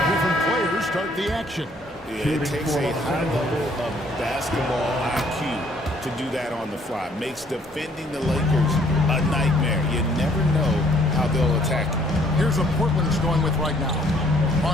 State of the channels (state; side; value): normal; both; correlation 0.63